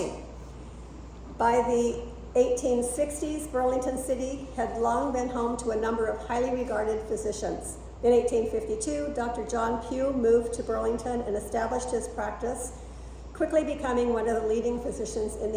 By the 1860s, Burlington City had long been home to a number of highly regarded physicians. In 1852, Dr. John Pugh moved to Burlington and established his practice, quickly becoming one of the leading physicians in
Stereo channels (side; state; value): both; identical; correlation 1.00